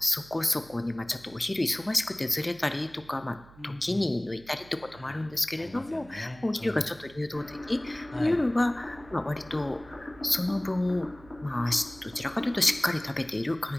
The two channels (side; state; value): right; noise; hum, 22 dB below the sound